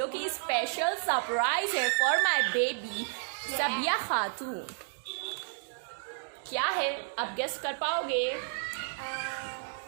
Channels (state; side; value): silent; left; digital silence